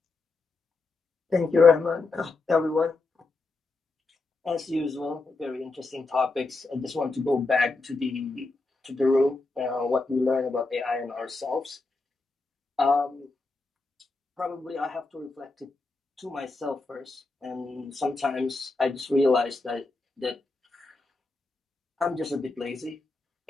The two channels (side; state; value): right; quieter; 3.6 dB